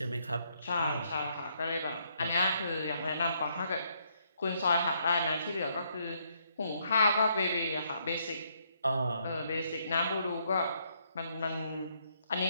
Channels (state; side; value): inverted; both; correlation -0.72